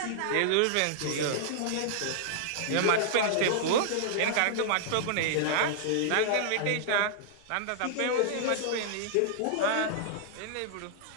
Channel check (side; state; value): both; different; correlation -0.01